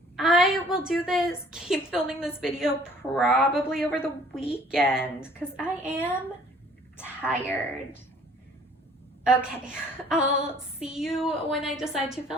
I will do this, keep filming this video probably over the weekend because I am tired. Okay, I'll see you when I decide to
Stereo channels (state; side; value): normal; both; correlation 0.55